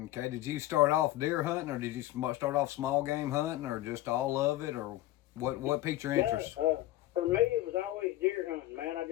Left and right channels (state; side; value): quieter; right; 15.7 dB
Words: Okay, did you start off deer hunting, or did you start off small game hunting, or just all of it, or what piqued your interest? For me, it was always deer hunting, man. I